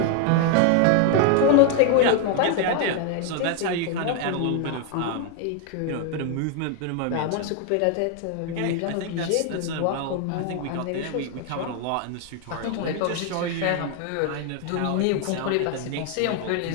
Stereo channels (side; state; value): both; different; correlation 0.01